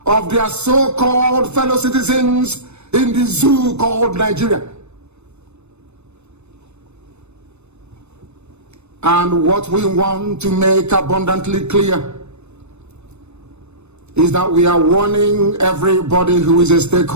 their so-called fellow citizens in the zoo called Nigeria. And what we want to make abundantly clear is that we are warning everybody who is a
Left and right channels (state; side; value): late; left; 0.81 ms